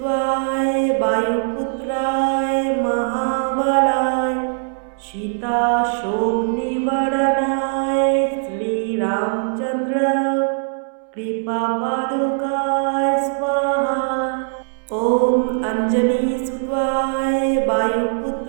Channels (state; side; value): silent; left; 66 dB below the other